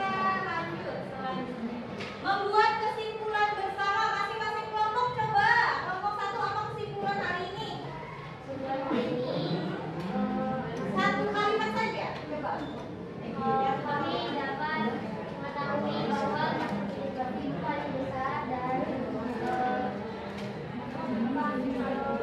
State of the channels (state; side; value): identical; both; correlation 1.00